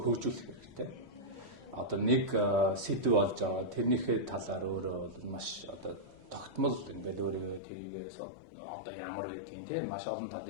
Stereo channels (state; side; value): drops out; right; at 7.6 s